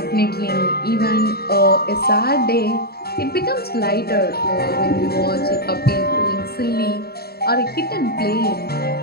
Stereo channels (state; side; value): late; right; 0.45 ms